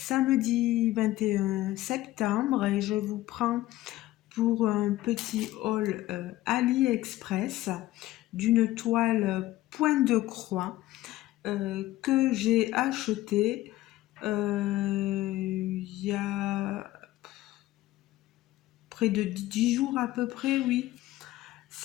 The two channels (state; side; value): quieter; right; 16.0 dB